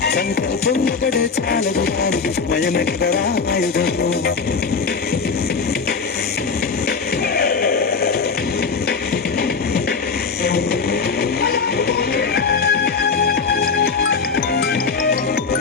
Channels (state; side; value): quieter; right; 5.1 dB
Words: సంకల్పం ఒకటే చాలదు దానికి సమయమే కదరా ఆయుధము